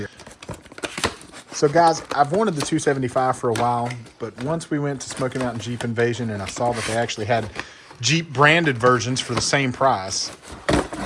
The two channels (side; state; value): both; identical; correlation 1.00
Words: So guys, I've wanted the 275 for a while, but once we went to Smoky Mountain Jeep Invasion and I saw that they actually had Jeep branded versions for the same price,